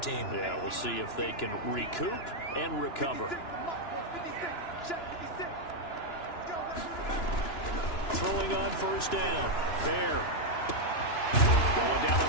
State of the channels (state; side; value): late; right; 2.9 ms